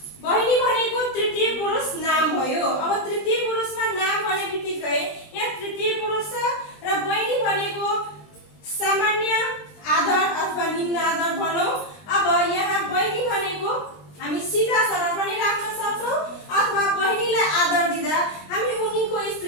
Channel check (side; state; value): right; late; 20 ms